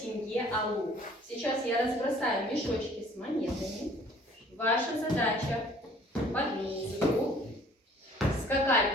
Сейчас я разбросаю мешочки с монетами. Ваша задача под музыку скакать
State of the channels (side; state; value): both; normal; correlation 0.54